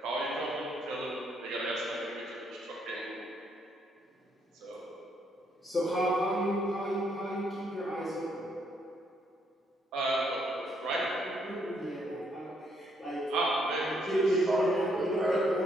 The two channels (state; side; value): normal; both; correlation 0.73